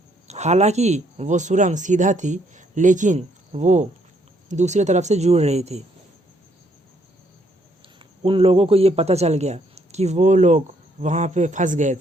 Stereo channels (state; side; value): normal; both; correlation 0.70